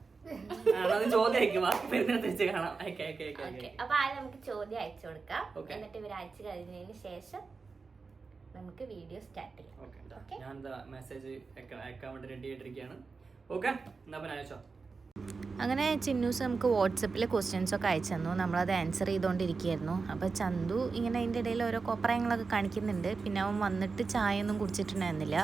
ചോദ്യം അപ്പൊ ആദ്യം നമുക്ക് ചോദ്യം അയച്ചു കൊടുക്കാം. എന്നിട്ട് ഇവർ അയച്ചു കഴിഞ്ഞതിന് ശേഷം നമുക്ക് വീഡിയോ സ്റ്റാർട്ട് ചെയ്യാം. ഞാൻ മെസ്സേജ് അയക്കാൻ വേണ്ടി റെഡി ആയിട്ടിരിക്കുകയാണ്. ഓക്കെ, എന്നാ പിന്നെ അയച്ചോ. അങ്ങനെ ചിന്നൂസ് നമുക്ക് വാട്സപ്പിൽ ക്വസ്റ്റ്യൻസ് ഒക്കെ അയച്ചു തന്നു. നമ്മളത് ആൻസർ ചെയ്തുകൊണ്ടിരിക്കുകയായിരുന്നു. അപ്പോൾ ചന്തു ഇങ്ങനെ അതിൻ്റെ ഇടയിൽ ഓരോ കോപ്രായങ്ങളൊക്കെ കാണിക്കുന്നുണ്ട്. പിന്നെ അവൻ വന്നിട്ട് ചായ ഒന്നും കുടിച്ചിട്ടുണ്ടായിരുന്നില്ല.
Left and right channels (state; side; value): quieter; left; 4.5 dB